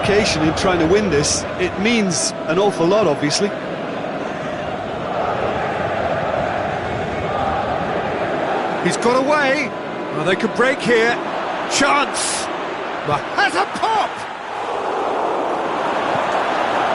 in trying to win this. It means an awful lot, obviously. He's got away. Well, they could break here. Chance. But has a pop!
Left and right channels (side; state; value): both; identical; correlation 1.00